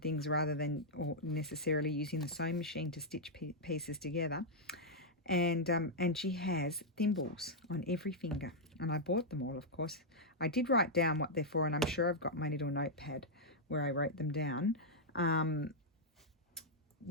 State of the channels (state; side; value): normal; both; correlation -0.04